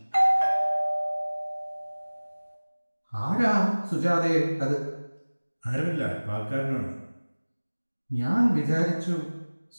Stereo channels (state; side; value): inverted; both; correlation -1.00